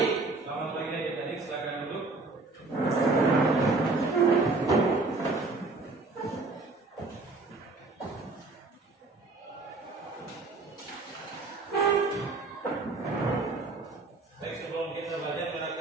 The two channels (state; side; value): quieter; left; 3.5 dB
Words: Selamat pagi adik-adik, silakan duduk. Baik, sebelum kita belajar, kita